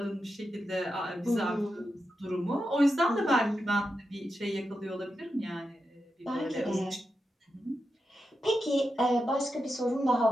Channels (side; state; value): both; normal; correlation 0.88